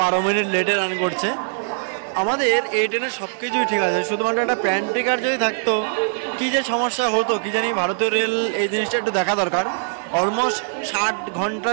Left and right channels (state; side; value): silent; left; digital silence